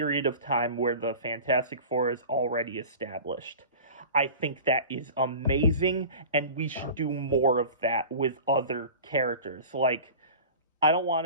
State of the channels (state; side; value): inverted; both; correlation -0.38